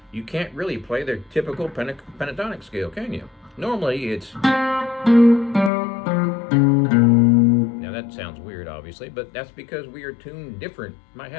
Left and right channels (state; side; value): drops out; right; at 5.7 s